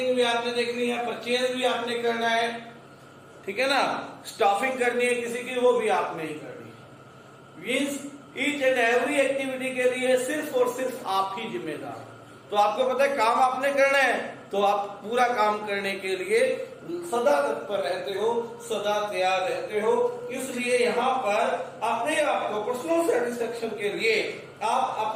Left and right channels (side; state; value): both; identical; correlation 1.00